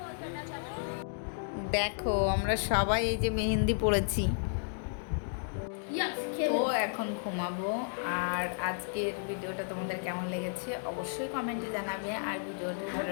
দেখো আমরা সবাই এই যে মেহেন্দি পড়েছি, তো এখন ঘুমাবো। আর আজকের ভিডিওটা তোমাদের কেমন লেগেছে অবশ্যই কমেন্টে জানাবে, আর ভিডিওটা ভালো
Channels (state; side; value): silent; right; digital silence